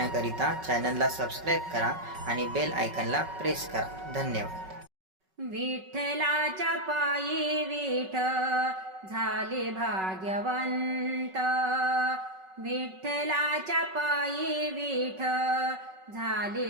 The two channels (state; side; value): late; left; 5.3 ms